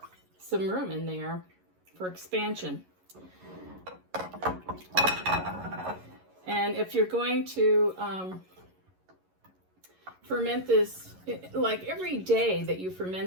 some room in there for expansion. And if you're going to ferment this, like every day that you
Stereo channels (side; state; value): left; late; 11 ms